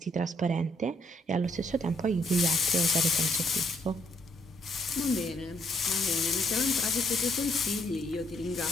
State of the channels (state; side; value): normal; both; correlation 0.72